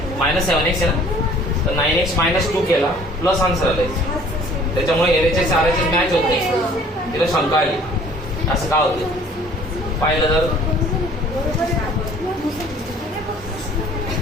9 -7x आहे ना, तर 9x -2 केला प्लस आन्सर आलाय. त्याच्यामुळे एरेचे सारेचे मॅच होत नाही. तिला शंका आली असं का होते पाहिलं तर.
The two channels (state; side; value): normal; both; correlation 0.53